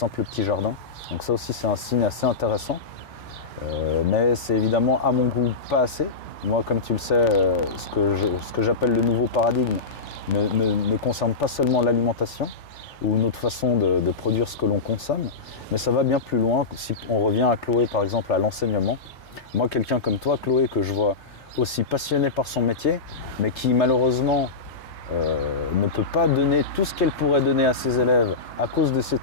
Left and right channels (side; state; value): right; quieter; 4.3 dB